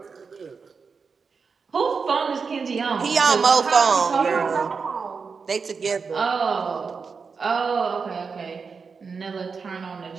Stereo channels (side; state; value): left; quieter; 5.3 dB